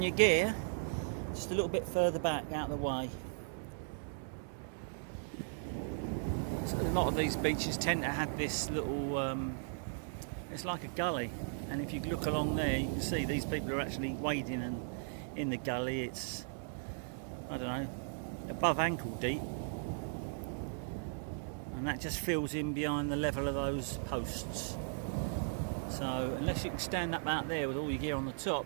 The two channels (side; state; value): left; silent; digital silence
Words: your gear just a little bit further back out of the way. So a lot of these beaches tend to have this little, it's like a gully, and if you look along there you can see these people are actually wading in the gully. It's, I don't know, above ankle deep, and that just fills in behind the level of those posts. So unless you can stand up out there with all your gear on the top